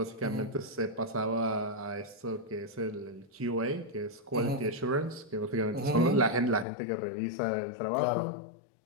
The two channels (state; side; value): drops out; right; at 6.7 s